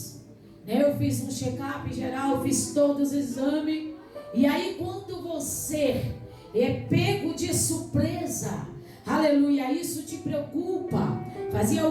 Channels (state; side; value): identical; both; correlation 1.00